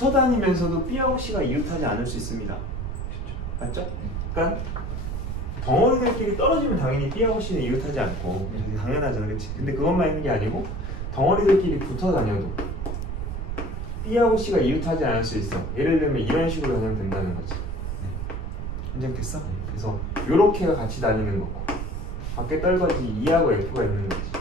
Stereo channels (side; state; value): right; noise; rumble, 4 dB below the sound